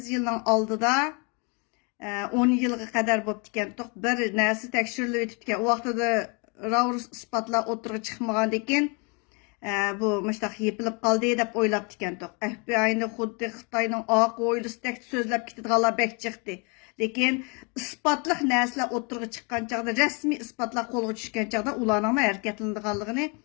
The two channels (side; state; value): right; quieter; 33.0 dB